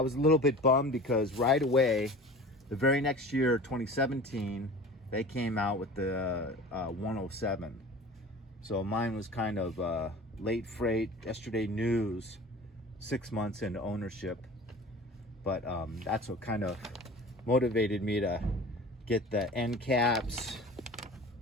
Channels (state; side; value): normal; both; correlation 0.39